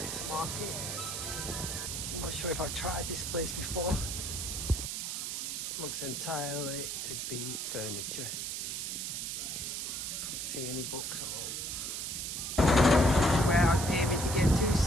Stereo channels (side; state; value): right; noise; hiss, 3 dB below the sound